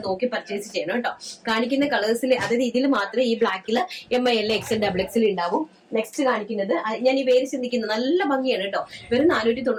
നോക്കി പർച്ചേസ് ചെയ്യണം കേട്ടോ. കാണിക്കുന്ന കളേഴ്സിൽ അതായത് ഇതിൽ മാത്രമേ ഈ ബ്ലാക്കിൽ ML, XL, XXL ഉണ്ടാവും. നെക്സ്റ്റ് കാണിക്കുന്നത് ഞാൻ ഈ വേര് ചിന്തിക്കുന്നത് നല്ല ഭംഗിയാണ് കേട്ടോ. വെറും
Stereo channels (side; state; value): both; identical; correlation 1.00